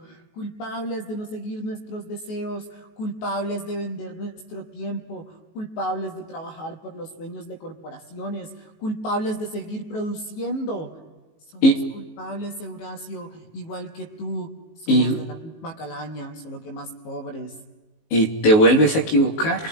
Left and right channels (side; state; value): right; late; 19 ms